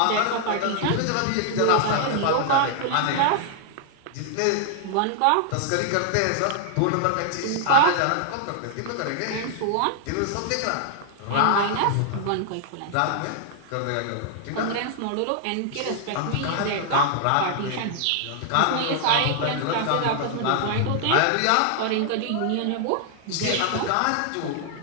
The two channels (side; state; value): both; different; correlation 0.00